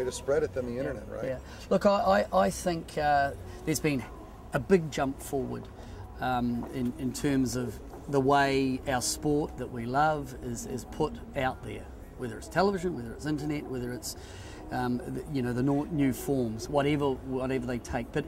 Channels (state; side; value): identical; both; correlation 1.00